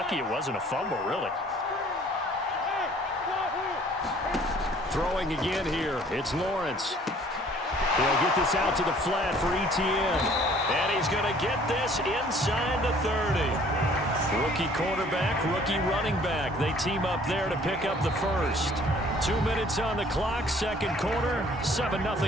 it wasn't a fumble, really. Throwing again here, it's Lawrence. He'll get this out to the flat for ETN. And he's going to get this inside the 30. Rookie quarterback, rookie running back. They team up there to pick up the first. 2 minutes on the clock, 2nd quarter,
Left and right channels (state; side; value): normal; both; correlation 0.55